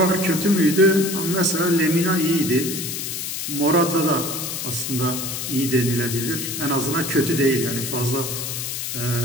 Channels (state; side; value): noise; left; hiss, 4 dB below the sound